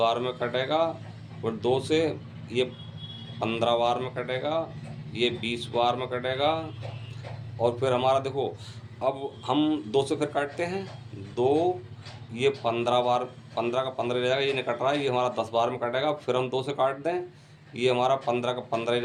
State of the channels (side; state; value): both; identical; correlation 1.00